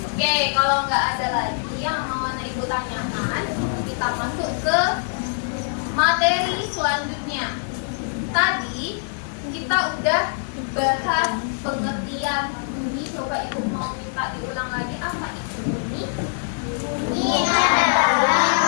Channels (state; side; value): silent; right; digital silence